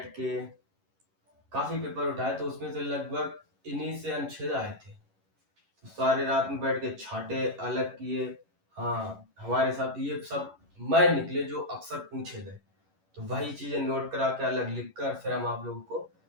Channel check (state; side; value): late; left; 11 ms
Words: के, काफी पेपर उठाए, तो उसमें से लगभग इन्हीं से अनुच्छेद आए थे। तो सारे रात में बैठ के छाटे, अलग किए। हाँ, हमारे साथ ये सब मैं निकले जो अक्सर पूछे गए, तो वही चीजें नोट करा के अलग लिख कर फिर हम आप लोगों को